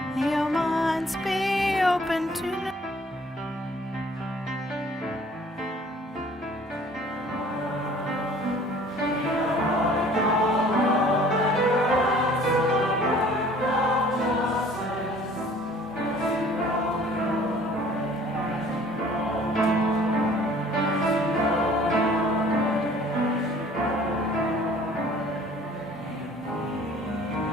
Your minds be open to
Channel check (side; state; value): both; normal; correlation 0.53